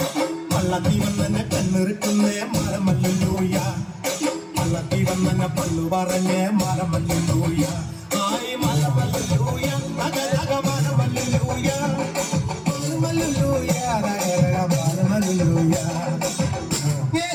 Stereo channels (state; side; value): identical; both; correlation 1.00